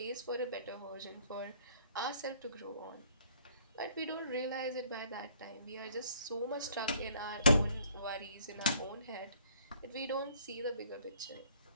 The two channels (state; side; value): inverted; both; correlation -0.59